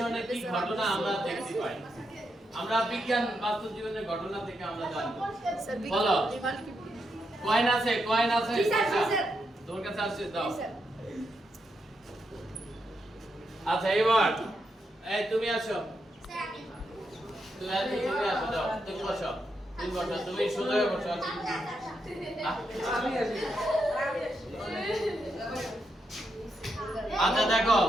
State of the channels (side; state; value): both; normal; correlation 0.83